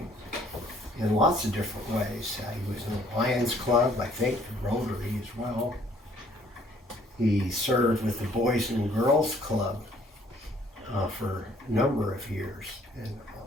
in lots of different ways. He was in the Lions Club, I think, Rotary as well. He served with the Boys and Girls Club for a number of years and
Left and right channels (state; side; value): normal; both; correlation 0.61